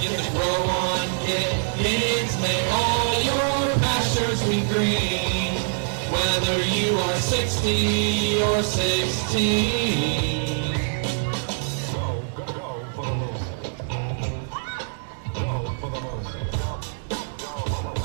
the grow on, get pigs, may all your pastures be green, whether you are 60 or 16.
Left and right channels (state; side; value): silent; left; digital silence